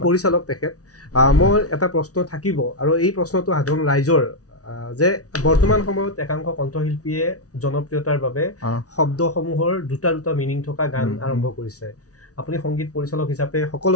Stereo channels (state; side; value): late; right; 0.67 ms